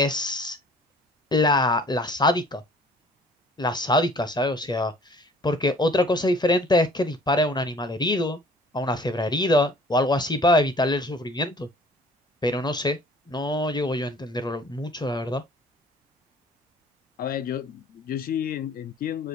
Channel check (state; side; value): normal; both; correlation 0.52